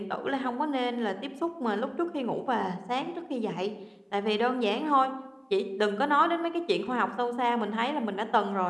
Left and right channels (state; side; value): identical; both; correlation 1.00